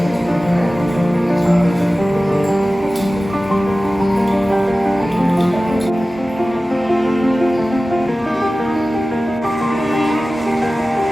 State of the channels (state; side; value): normal; both; correlation 0.96